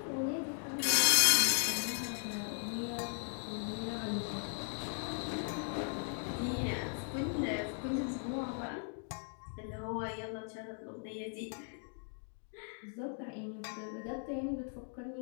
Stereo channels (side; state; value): right; silent; 53 dB below the other